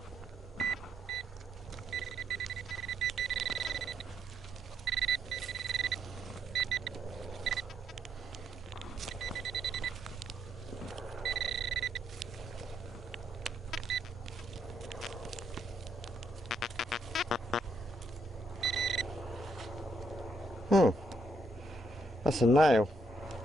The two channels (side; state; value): both; normal; correlation 0.75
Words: That's a nail.